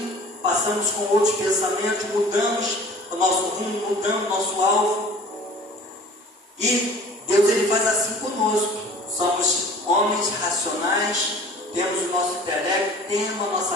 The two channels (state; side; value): normal; both; correlation 0.46